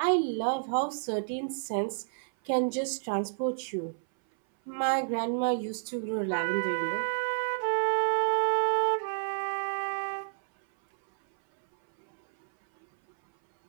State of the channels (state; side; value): silent; left; 58 dB below the other